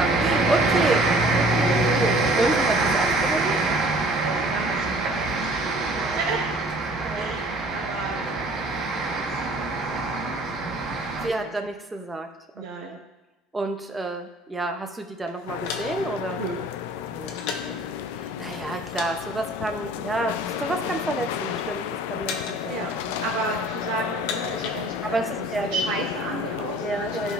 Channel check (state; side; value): normal; both; correlation 0.50